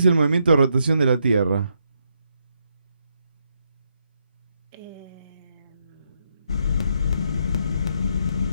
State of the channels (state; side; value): inverted; both; correlation -0.78